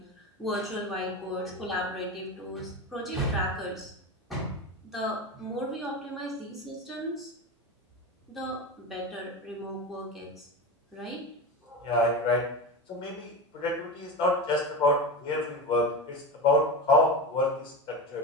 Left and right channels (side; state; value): both; normal; correlation 0.24